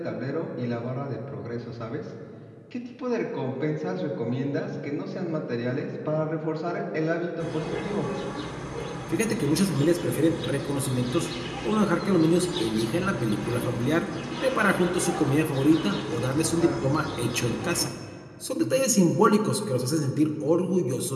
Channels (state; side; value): identical; both; correlation 1.00